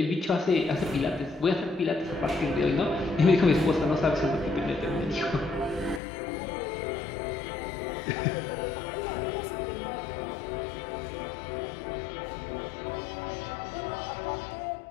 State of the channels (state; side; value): drops out; right; at 6.0 s